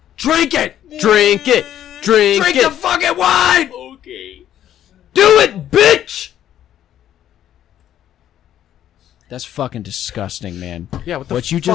Drink it. Drink it! Drink Drink it! the fucking wine. Okay. Do it, bitch! That's fucking disgusting, man. Yeah, what the What you fuck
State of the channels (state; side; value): quieter; right; 11.2 dB